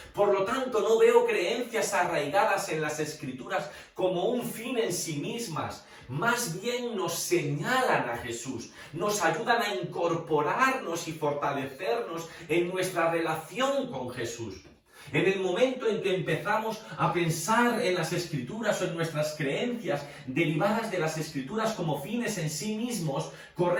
Por lo tanto, no veo creencias arraigadas en las Escrituras como un fin en sí mismas. Más bien nos señalan a Jesús, nos ayudan a incorporarnos y fortalecernos en nuestra relación con Jesús. En el momento en que empezamos a pensar en las Escrituras o en nuestras creencias derivadas de las Escrituras como fines en sí mismos,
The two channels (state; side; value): identical; both; correlation 1.00